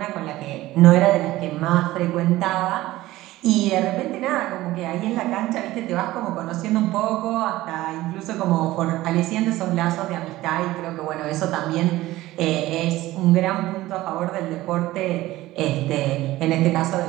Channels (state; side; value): quieter; left; 16.9 dB